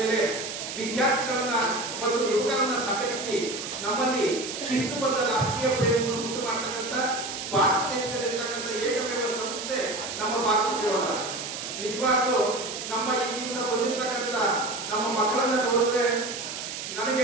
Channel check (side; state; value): right; noise; hiss, 7 dB below the sound